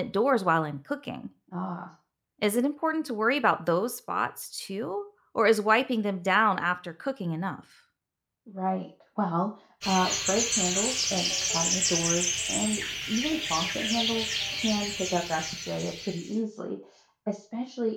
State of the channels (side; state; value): both; identical; correlation 1.00